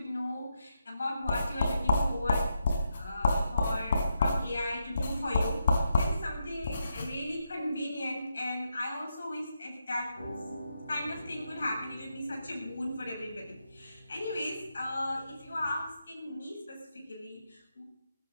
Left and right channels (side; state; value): both; inverted; correlation -0.83